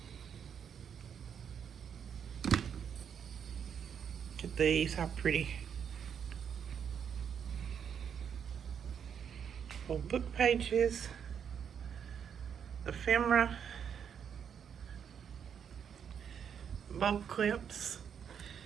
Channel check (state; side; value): quieter; left; 7.8 dB